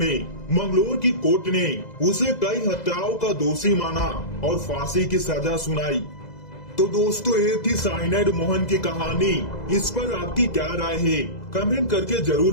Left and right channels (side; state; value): right; late; 2.0 ms